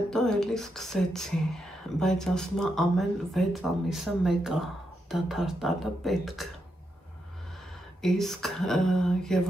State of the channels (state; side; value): normal; both; correlation 0.83